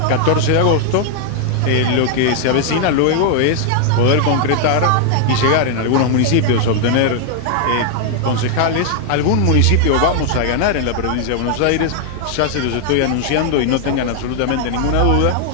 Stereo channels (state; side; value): different; both; correlation 0.00